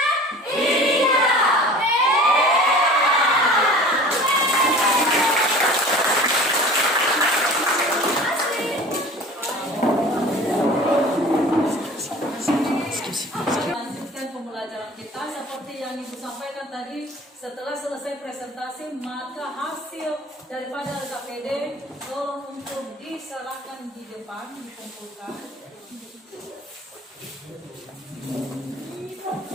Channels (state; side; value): normal; both; correlation 0.43